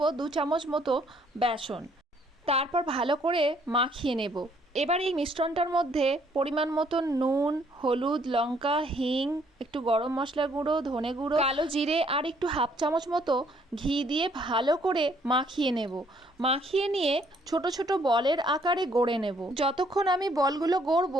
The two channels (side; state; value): both; normal; correlation 0.65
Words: 2 চামচ মতো বেসন। তারপর ভালো করে মাখিয়ে নেব। এবার এই মিশ্রণটার মধ্যে পরিমাণ মতো নুন, হলুদ, লঙ্কা, হিং, একটু গরম মশলা গুঁড়ো, ধনে গুঁড়ো, কালো জিরে আর একটু 1/2 চামচ মতো ঘি দিয়ে ভালো করে মাখিয়ে নেব। মাখিয়ে নিয়ে ছোট ছোট বলের আকারে গড়ে নেব। যতক্ষণ আমি বলগুলো